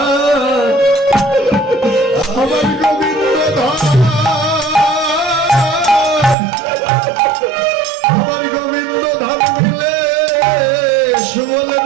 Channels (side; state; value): left; drops out; at 6.4 s